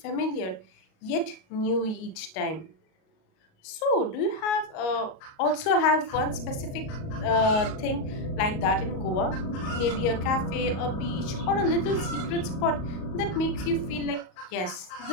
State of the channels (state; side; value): late; right; 38 ms